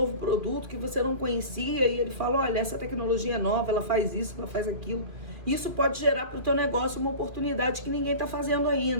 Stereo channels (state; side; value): late; left; 2.5 ms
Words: produto que você não conhecia e ele fala, olha, essa tecnologia é nova, ela faz isso, ela faz aquilo. Isso pode gerar para o teu negócio uma oportunidade que ninguém está fazendo